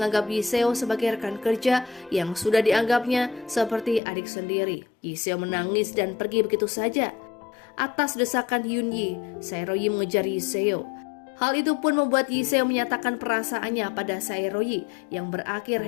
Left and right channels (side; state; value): right; drops out; at 4.0 s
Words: Yiseo sebagai rekan kerja yang sudah dianggapnya seperti adik sendiri. Yiseo menangis dan pergi begitu saja. Atas desakan Yunyi, Saeroyi mengejar Yiseo. Hal itu pun membuat Yiseo menyatakan perasaannya pada Saeroyi yang berakhir